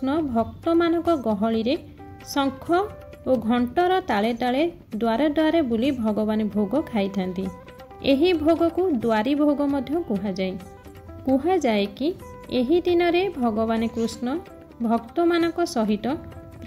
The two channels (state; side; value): identical; both; correlation 1.00